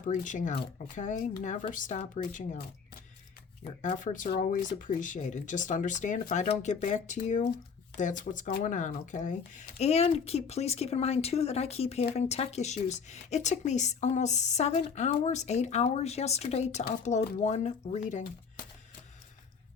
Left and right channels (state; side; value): quieter; right; 6.0 dB